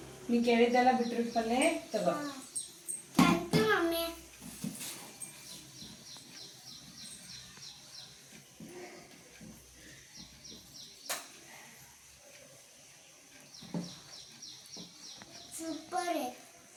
ನೀ ಕೇಳಿದ್ದಲ್ಲ ಬೀಟ್ರೂಟ್ ಪಲ್ಯ ತಗೋ. Thank you mummy. Super.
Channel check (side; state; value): both; identical; correlation 1.00